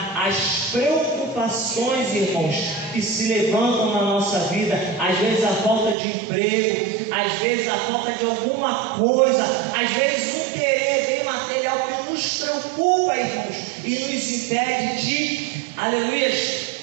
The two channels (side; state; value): left; drops out; at 6.0 s